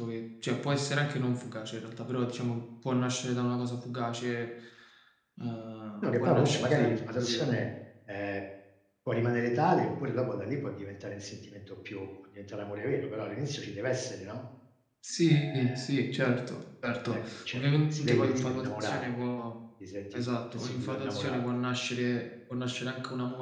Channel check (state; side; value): identical; both; correlation 1.00